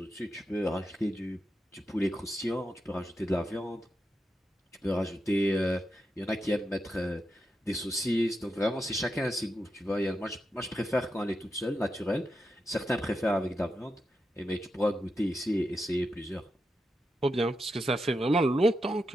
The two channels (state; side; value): normal; both; correlation 0.87